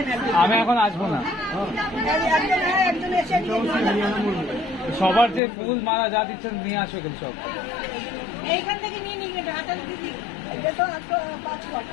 আমি এখন আসবো না। সবার যে ফুল মালা যা দিচ্ছেন নিয়ে আসো এগুলো সব। এইখান থেকে নিয়ে নিবি, হাতে দিবি। এটা তো একটা 5 কোয়াট।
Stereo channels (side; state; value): right; drops out; at 5.4 s